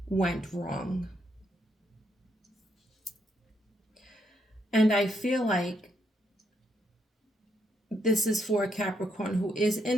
went wrong. And I feel like this is for a Capricorn who is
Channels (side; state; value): both; normal; correlation 0.76